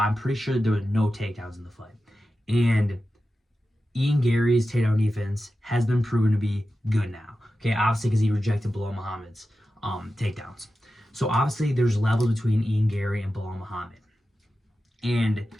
pretty sure there were no takedowns in the fight. And Ian Garry's takedown defense has been proven to be good now. Okay, obviously because he rejected Belal Muhammad's takedowns. So obviously there's levels between Ian Garry and Belal Muhammad. And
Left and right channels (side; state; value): both; normal; correlation 0.92